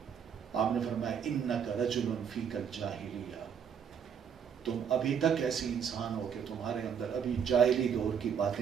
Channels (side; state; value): left; quieter; 7.6 dB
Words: آپ نے فرمایا انک رجل فیک الجاہلیہ، تم ابھی تک ایسی انسان ہو کہ تمہارے اندر ابھی جاہلی دور کی